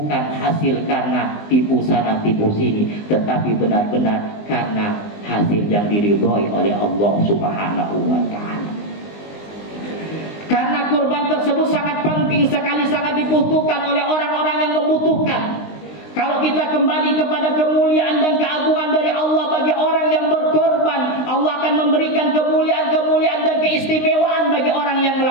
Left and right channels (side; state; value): right; late; 19 ms